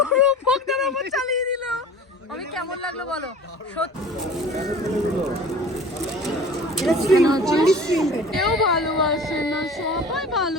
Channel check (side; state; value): both; normal; correlation 0.42